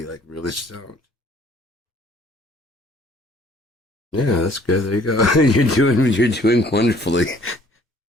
like really stoned. Yeah, that's good. There you go. You're doing wonderfully.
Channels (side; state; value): both; normal; correlation 0.58